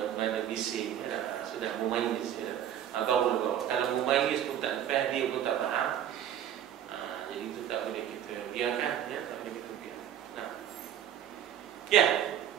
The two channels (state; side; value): quieter; left; 10.3 dB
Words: bising, ya, sudah memayyiz. Ya. Barulah bawa. Kalau memayyiz pun tak lepas, dia pun tak faham, jadi itu tak boleh kita biarkan. Ya, tak boleh kita biarkan. Ya.